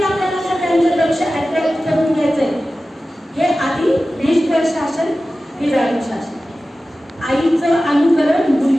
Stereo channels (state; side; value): normal; both; correlation 0.95